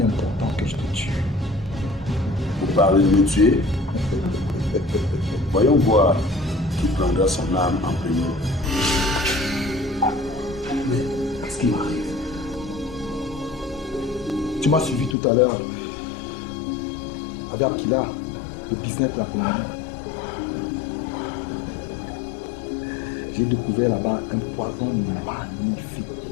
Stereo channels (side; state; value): right; drops out; at 15.2 s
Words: est important que je te tue. Vous parlez de me tuer? Voyons voir qui prendra son âme en premier. Mais ce qui m'arrive, tu m'as suivi tout à l'heure avec Akila, le business de la Colombie. J'ai découvert là-bas un poison